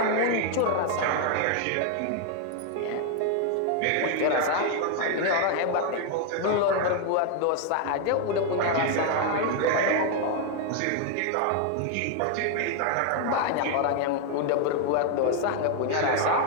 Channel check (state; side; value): different; both; correlation 0.01